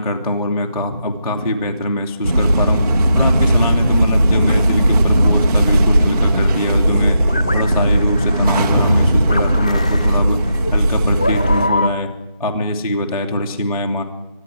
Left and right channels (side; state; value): both; inverted; correlation -0.81